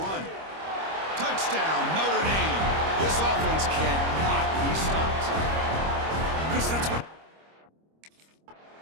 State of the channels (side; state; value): left; late; 25 ms